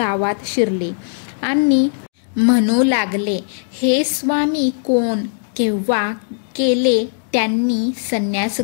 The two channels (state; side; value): silent; right; digital silence